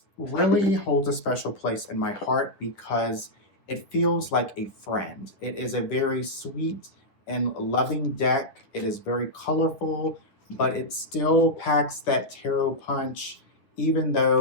really holds a special place in my heart because it feels like a friend. It is a very sweet and loving deck. It is very colorful, but it still packs that tarot punch. Even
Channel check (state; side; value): late; right; 9.8 ms